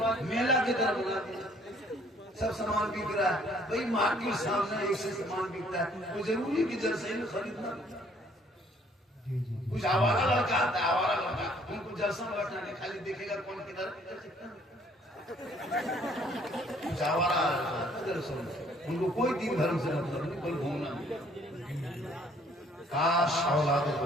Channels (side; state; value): both; normal; correlation 0.61